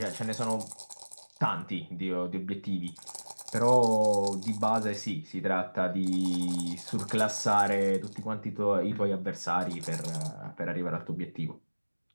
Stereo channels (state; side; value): inverted; both; correlation -1.00